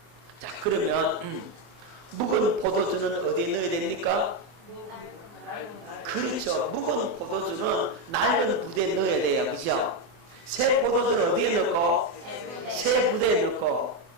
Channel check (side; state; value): left; late; 24 ms